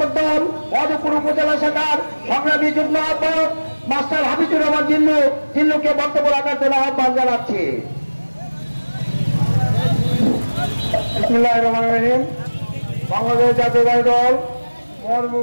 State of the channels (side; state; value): both; inverted; correlation -1.00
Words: দল মধুপুর উপজেলা শাখার সংগ্রামী যুগ্ম আহ্বায়ক মাস্টার হাবিজুর রহমান জিল্লুকে বক্তব্য রাখার জন্য আহ্বান জানাচ্ছি। বিসমিল্লাহির রহমানির রহিম। বাংলাদেশ জাতীয়তাবাদী দল মধুপুর